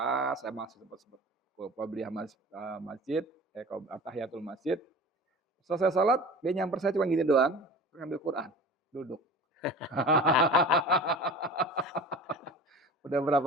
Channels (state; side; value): normal; both; correlation 0.38